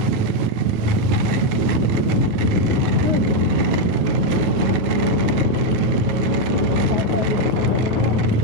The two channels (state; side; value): late; left; 9.3 ms